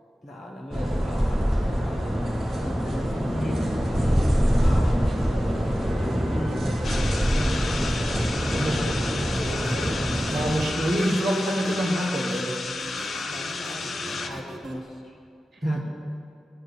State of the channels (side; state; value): both; normal; correlation 0.94